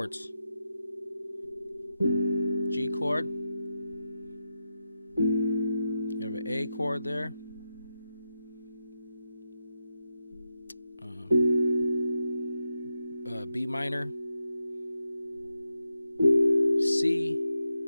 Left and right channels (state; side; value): inverted; both; correlation -0.87